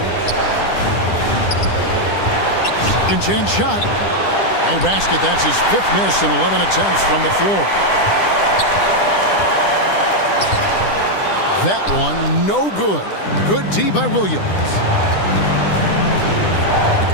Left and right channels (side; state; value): right; late; 10 ms